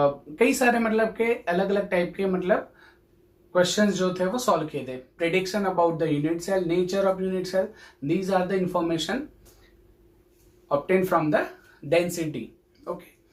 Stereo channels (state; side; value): identical; both; correlation 1.00